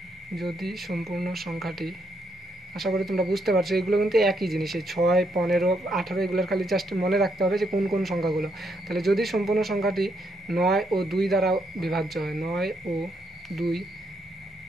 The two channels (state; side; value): normal; both; correlation 0.76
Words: সংখ্যাটি, আশা করি তোমরা বুঝতে পারছো, এগুলো কিন্তু একই জিনিস, এই 6, 15, 18 এগুলোর খালি জাস্ট মনে রাখতে হবে যে কোন কোন সংখ্যাগুলো। তাহলে যদি সম্পূর্ণ সংখ্যাটি 9 ও 2 দ্বারা বিভাজ্য হয়, 9 ও 2